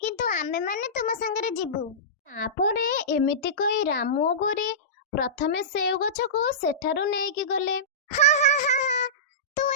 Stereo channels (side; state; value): both; normal; correlation -0.20